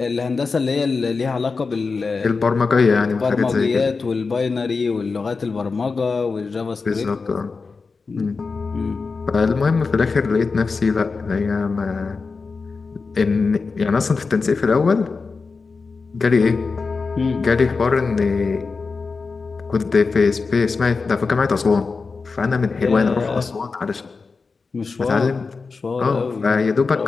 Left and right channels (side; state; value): right; quieter; 4.5 dB